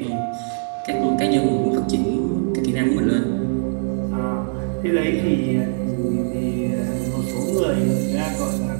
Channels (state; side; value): silent; left; digital silence